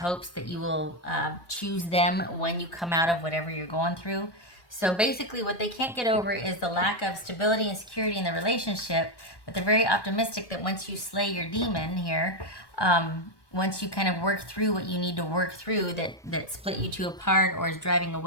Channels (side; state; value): right; late; 1.2 ms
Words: that you will choose them when you come out of whatever you're going through. So basically what they can't get over is the lack of stability and security in the relationship, but they're very optimistic that once you slay your demon here, once you kind of work through what you need to work through that split you two apart, or is driving a